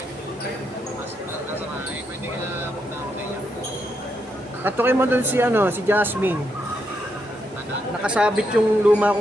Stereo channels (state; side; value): normal; both; correlation 0.80